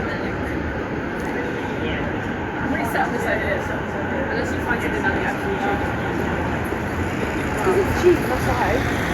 Unless you find something that actually It's cheap, that's why.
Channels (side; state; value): both; identical; correlation 1.00